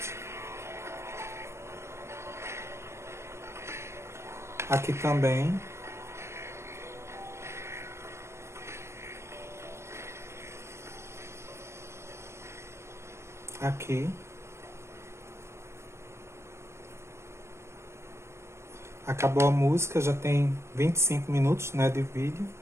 Aqui também. aqui. Acabou a música, já tem 25 minutos, né, de vídeo.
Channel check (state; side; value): late; left; 0.13 ms